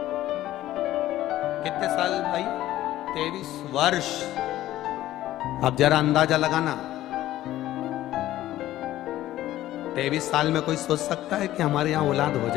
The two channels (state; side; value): quieter; right; 14.4 dB